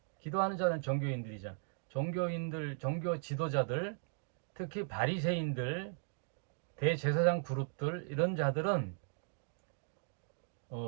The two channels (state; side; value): silent; left; 53 dB below the other